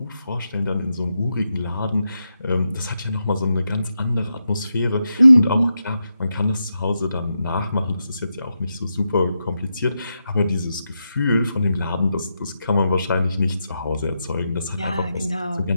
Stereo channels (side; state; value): both; inverted; correlation -0.86